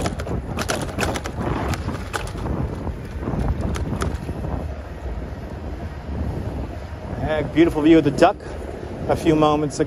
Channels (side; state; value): both; identical; correlation 1.00